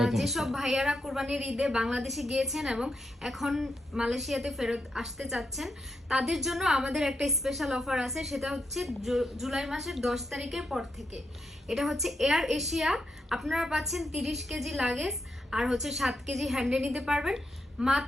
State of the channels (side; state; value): both; normal; correlation 0.83